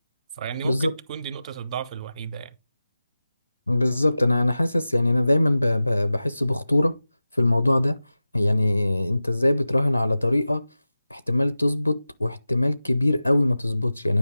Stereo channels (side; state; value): both; inverted; correlation -0.95